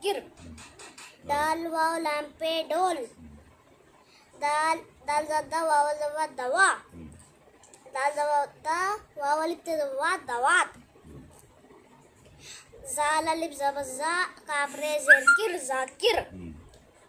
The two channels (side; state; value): both; identical; correlation 1.00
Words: Dal Waw Lampe Dol. Dal Zadda Waw Zawa Dawa. Dal Zawata Wawalit Zawa Dawat. Zalali Zabaza Kapre Zerkir Zakir.